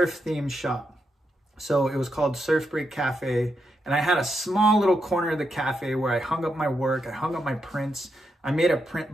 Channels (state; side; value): normal; both; correlation 0.83